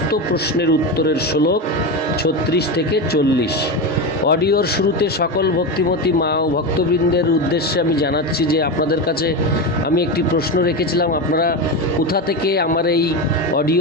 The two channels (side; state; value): both; normal; correlation 0.18